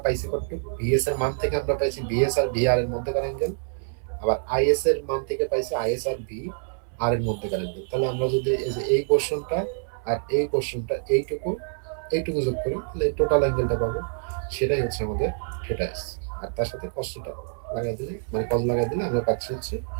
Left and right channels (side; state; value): left; silent; 61 dB below the other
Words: পাইছি কত, ভিএস এর মান থেকে আমরা পাইছি ভিএস আর ভিআর এর মধ্যেকার অ্যাঙ্গেল, আবার আইএস এর মান থেকে পাইছি আইএস আর ভি আর এর মধ্যেকার অ্যাঙ্গেল। তাহলে আমরা যদি এই যে এই পোরশনটা আর এই পোরশনটা এইটুকু যোগ করি, তাহলে টোটাল অ্যাঙ্গেলটা পাবো, সেটাই হচ্ছে আমাদের থিটা এস। আর তার সাথে কসটা লাগাই দিলে, মানে কস লাগাই দিলে আমরা পাচ্ছি হচ্ছে